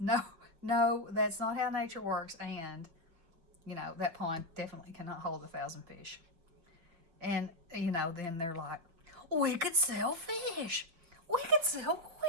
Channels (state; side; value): late; left; 6.0 ms